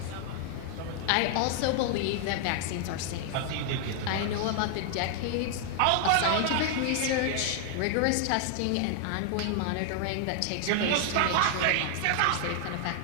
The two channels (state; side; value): different; both; correlation 0.00